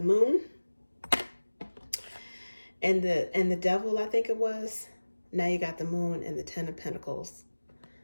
moon and the devil, I think it was. Now you got the moon and the 10 of Pentacles.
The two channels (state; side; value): inverted; both; correlation -1.00